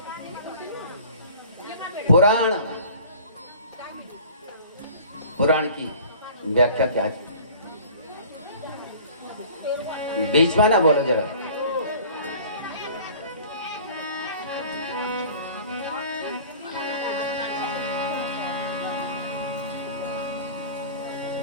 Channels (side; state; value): both; inverted; correlation -0.45